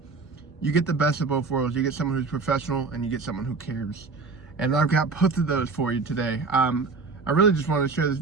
you get the best of both worlds. You get someone who's professional and you get someone who cares. And I've got both of those for you today. I really just wanted to share this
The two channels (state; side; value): quieter; left; 4.3 dB